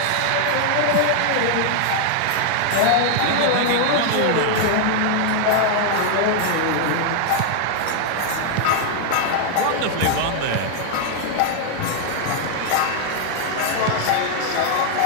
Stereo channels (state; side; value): different; both; correlation 0.00